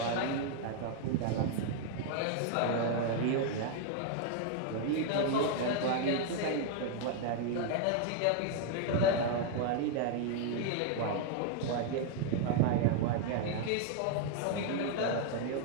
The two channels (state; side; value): different; both; correlation 0.00